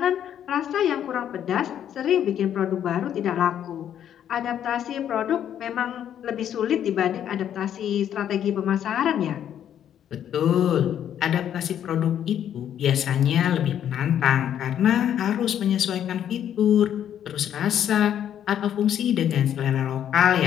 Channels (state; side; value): quieter; right; 10.0 dB